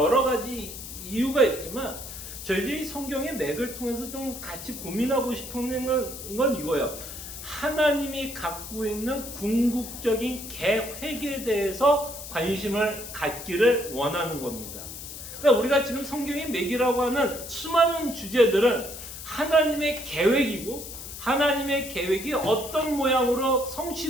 가지 이유가 있지만 저희들이 성경의 맥을 통해서 좀 같이 고민하고 싶은 건 이거예요. 하나님이 갖고 있는 궁극적인 계획에 대해서 관심을 갖기를 원하는 겁니다. 그러니까 우리가 지금 성경의 맥이라고 하는 수많은 주제들은 하나님의 계획이고 하나님의 계획이 어떤 모양으로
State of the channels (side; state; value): left; noise; hiss, 11 dB below the sound